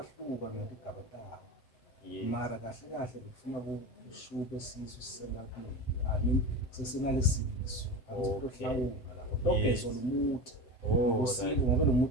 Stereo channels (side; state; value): right; late; 7.7 ms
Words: ngetigaba tawo mara kahle kahle bekufuna kushube sisu sisengakuningi sesingalesisu akutohlawula lapho togezwa lomuthi ngosinto ngobe lo